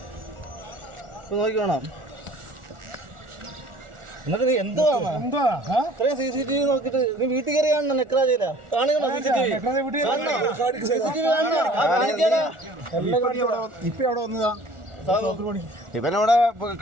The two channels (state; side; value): late; left; 1.4 ms